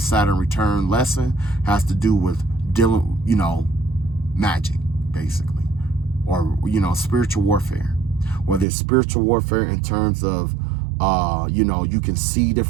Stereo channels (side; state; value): left; drops out; at 8.7 s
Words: return lesson has to do with dealing, magic, basically, or, spiritual warfare. Whether it's spiritual warfare in terms of, you can see